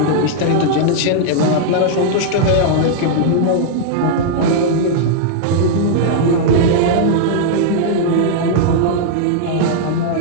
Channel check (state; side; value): different; both; correlation -0.01